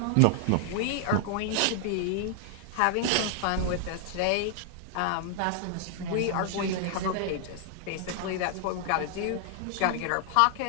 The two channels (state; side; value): different; both; correlation 0.00